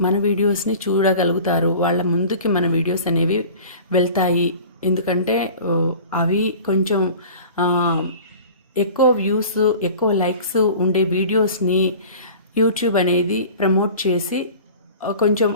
మన వీడియోస్ని చూడగలుగుతారు. వాళ్ళ ముందుకి మన వీడియోస్ అనేవి వెళ్తాయి. ఎందుకంటే అవి కొంచెం ఎక్కువ వ్యూస్, ఎక్కువ లైక్స్ ఉండే వీడియోస్ని యూట్యూబ్ అనేది ప్రమోట్ చేసి కొంచెం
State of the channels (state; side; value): inverted; both; correlation -0.41